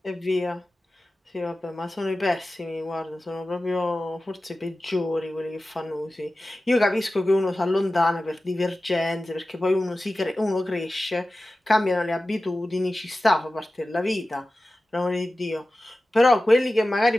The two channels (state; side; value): normal; both; correlation 0.95